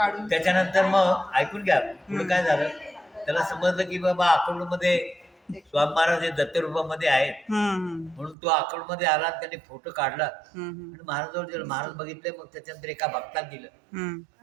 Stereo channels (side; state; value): left; drops out; at 8.3 s